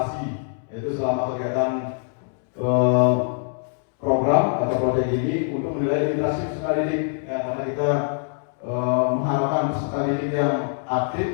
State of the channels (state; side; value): silent; right; 63 dB below the other